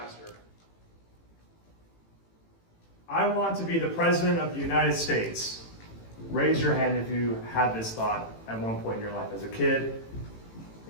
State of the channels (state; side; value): late; right; 18 ms